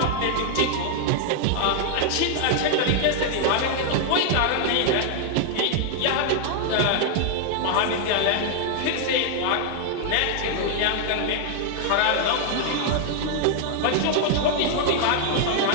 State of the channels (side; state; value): both; different; correlation 0.00